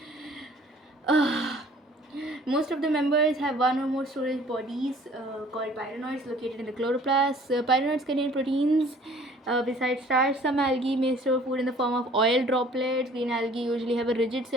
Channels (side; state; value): both; normal; correlation 0.53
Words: Most of the members have one or more storage bodies called pyrenoids located in the chloroplast. Pyrenoids contain proteins besides starch. Some algae may store food in the form of oil droplets. Green algae usually have a rigid